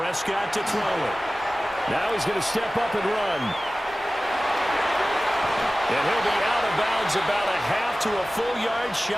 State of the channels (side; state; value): both; normal; correlation 0.97